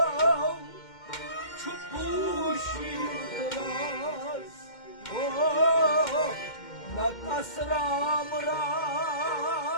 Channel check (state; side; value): late; right; 2.1 ms